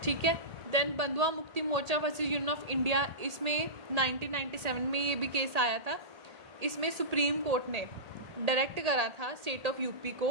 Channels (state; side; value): late; left; 1.8 ms